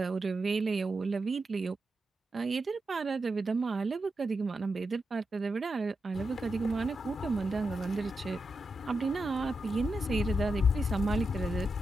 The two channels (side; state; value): both; normal; correlation 0.87